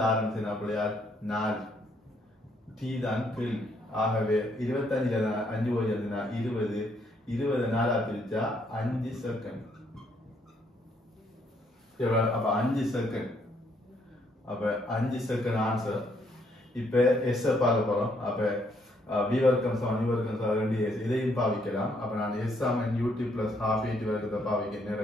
ஆரம்பிச்சுனா பிள்ளையார் 4 t தான் கேள்வி. ஆகவே 25ல 5 போய் எழுதுனா 20 20 4 பிரிச்சா 5 செகண்ட். அப்ப 5 செகண்ட். அப்ப 5 செகண்ட் ஆன்சர். இப்ப எஸ் பார்க்க போறோம். அப்ப v வர்க்கம் சமன் u வர்க்கம் சமன் 2s இதையும் பாவிக்கலாம். அப்ப நான் s Saman ut plus half at வர்க்கத்தை பாவிக்க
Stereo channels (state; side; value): normal; both; correlation 0.71